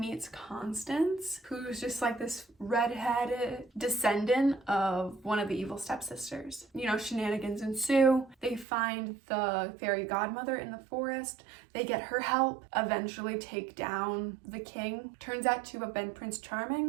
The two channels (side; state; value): left; drops out; at 8.7 s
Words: Constance, who's just like this redheaded descendant of one of the evil stepsisters. You know, shenanigans ensue. They find the fairy godmother in the forest. They get her help, eventually take down the king. Turns out to have been Prince